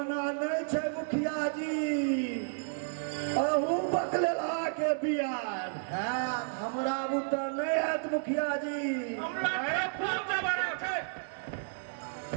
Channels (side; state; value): left; silent; 57 dB below the other